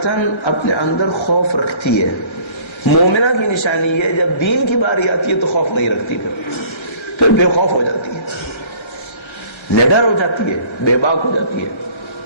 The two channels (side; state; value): right; late; 1.3 ms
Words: اپنے اندر خوف رکھتی ہے. مومنہ کی نشانی ہے جب دین کی باری آتی ہے تو خوف نہیں رکھتی، پھر بے خوف ہو جاتی ہے، نڈر ہو جاتی ہے، بے باک ہو جاتی ہے،